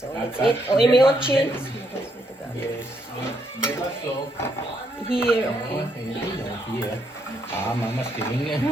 let's eat. Oh, imiochi. Yes. Beba so. Here, Oh, okay. here. Ah, mama's giving it.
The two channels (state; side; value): normal; both; correlation 0.75